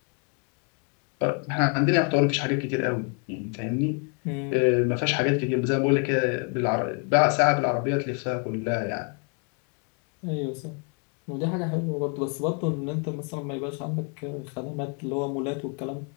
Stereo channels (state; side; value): quieter; right; 38.1 dB